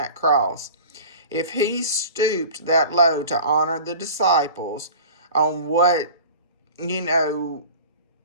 cross. If he stooped that low to honor the disciples on what,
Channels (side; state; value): both; inverted; correlation -0.39